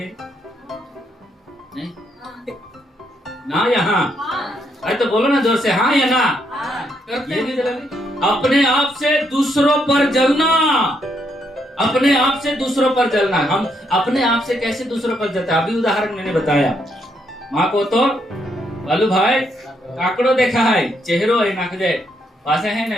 नहीं ना, यहाँ अरे तो बोलो ना जोर से, हाँ या ना। करते हैं जलन। अपने आप से दूसरों पर जलना, अपने आप से दूसरों पर जलना। हम अपने आप से कैसे दूसरों पर जलते? अभी उदाहरण मैंने बताया, माँ को तो बालू भाई काकड़ो देखा है, चेहरो है नाक दे पासे है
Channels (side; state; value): both; normal; correlation 0.76